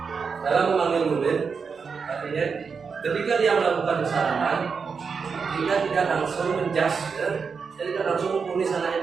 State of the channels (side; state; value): left; quieter; 5.6 dB